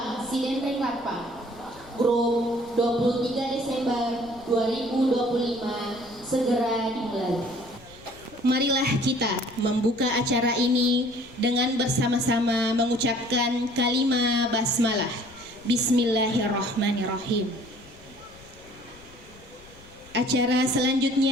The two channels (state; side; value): noise; left; rumble, 23 dB below the sound